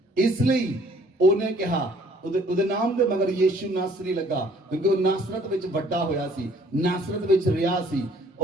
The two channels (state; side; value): normal; both; correlation 0.59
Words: ਇਸ ਲਈ ਉਹਨੇ ਕਿਹਾ, ਉਹਦੇ ਨਾਮ ਦੇ ਮਗਰ ਯੀਸ਼ੂ ਨਾਸਰੀ ਲੱਗਾ, ਕਿਉਂਕਿ ਉਹ ਨਾਸਰਤ ਵਿੱਚ ਵੱਡਾ ਹੋਇਆ ਸੀ, ਨਾਸਰਤ ਵਿੱਚ ਰਿਹਾ ਸੀ।